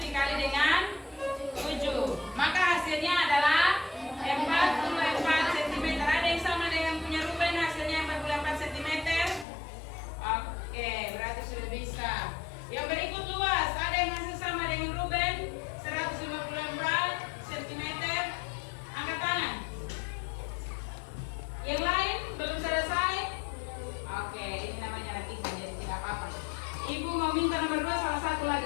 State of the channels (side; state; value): right; drops out; at 9.5 s